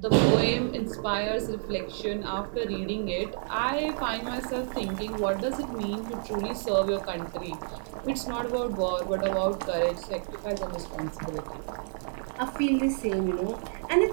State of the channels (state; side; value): silent; left; 58 dB below the other